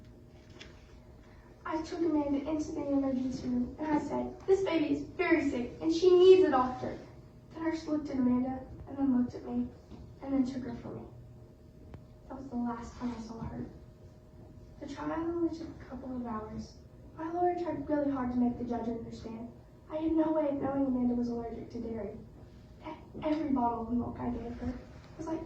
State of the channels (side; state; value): both; identical; correlation 1.00